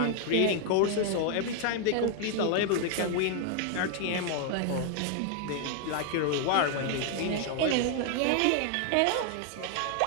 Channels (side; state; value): both; different; correlation 0.00